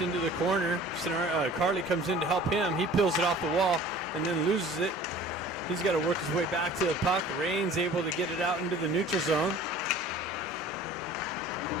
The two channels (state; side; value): normal; both; correlation 0.46